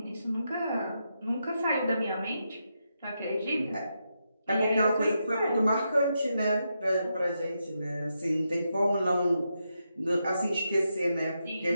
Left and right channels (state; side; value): inverted; both; correlation -0.84